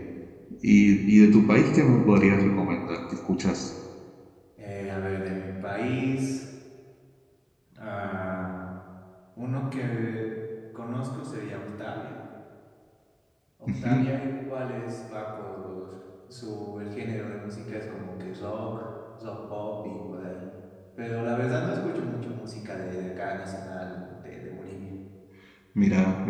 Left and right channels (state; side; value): identical; both; correlation 1.00